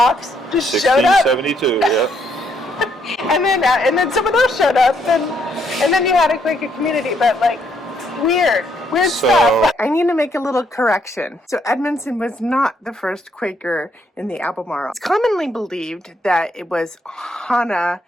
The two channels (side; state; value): both; normal; correlation 0.72